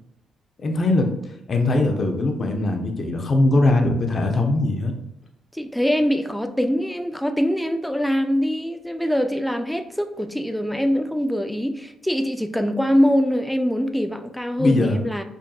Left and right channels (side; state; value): both; normal; correlation 0.90